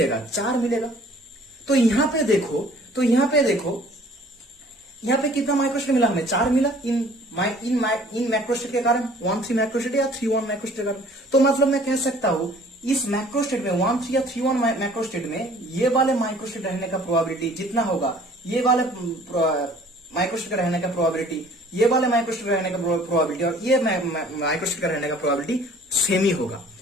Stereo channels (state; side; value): normal; both; correlation 0.53